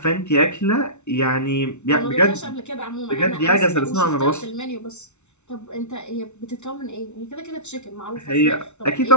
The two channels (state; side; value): late; right; 0.82 ms